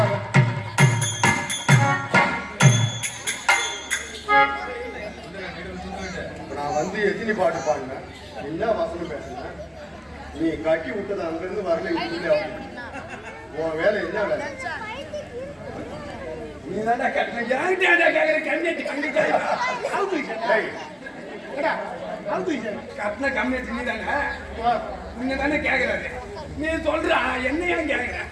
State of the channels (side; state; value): both; identical; correlation 1.00